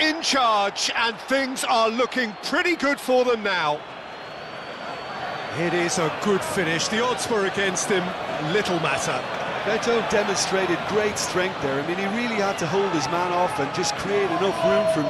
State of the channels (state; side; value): identical; both; correlation 1.00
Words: charge, and things are looking pretty good for them now. It is a good finish. The odds were against him. Little matter. Beto demonstrated great strength there. I mean, he really had to hold his man off and just create enough room for him